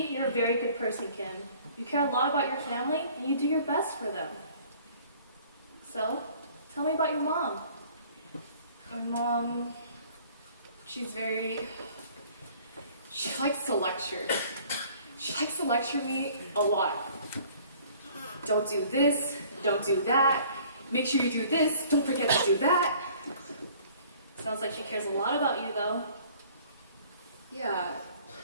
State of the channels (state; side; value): inverted; both; correlation -0.53